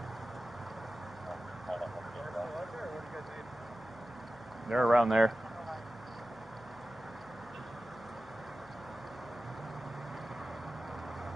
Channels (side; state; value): left; noise; hum, 25 dB below the sound